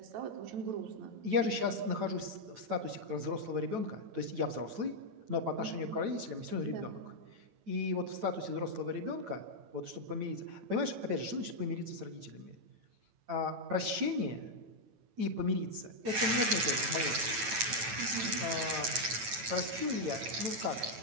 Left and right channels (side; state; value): left; late; 9.0 ms